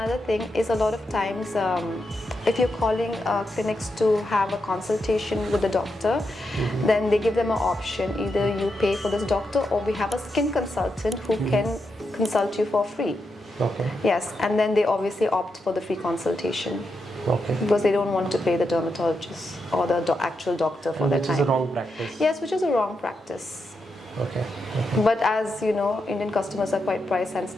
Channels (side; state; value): both; normal; correlation 0.85